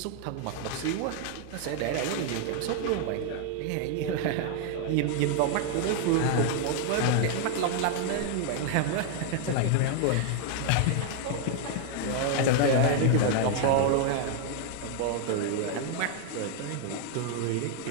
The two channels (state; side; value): different; both; correlation 0.00